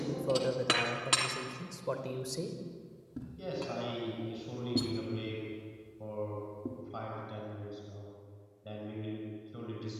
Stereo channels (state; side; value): identical; both; correlation 1.00